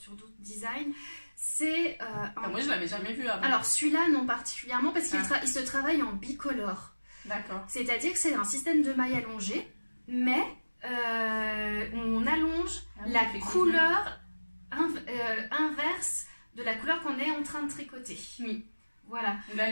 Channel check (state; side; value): inverted; both; correlation -1.00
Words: d'autres designs. C'est Moi, je l'avais jamais vu avant. Alors celui-là non particulièrement parce qu'il il se travaille en bicolore. D'accord. C'est-à-dire que c'est un système de mailles allongées, mais on allonge la couleur inverse de la couleur qu'on est en train de tricoter. Oui. Voilà. Là,